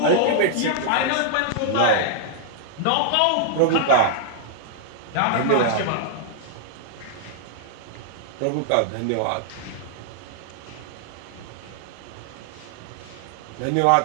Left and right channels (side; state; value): both; different; correlation -0.01